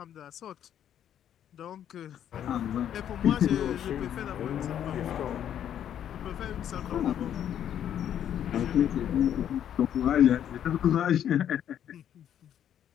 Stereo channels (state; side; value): quieter; right; 10.0 dB